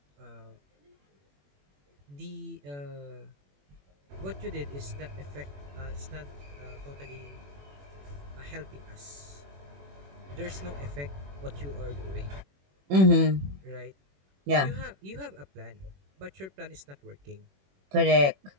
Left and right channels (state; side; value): late; left; 21 ms